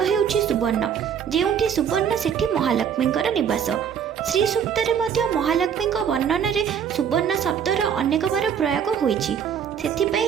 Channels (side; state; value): left; quieter; 8.0 dB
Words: हेउछि सुवर्ण। जेउठी सुवर्ण सेठी महालक्ष्मींकर निवास। श्री सूक्तरे मध्य महालक्ष्मींक वर्णन रे सुवर्ण शब्दर अनेक बार प्रयोग होइछि।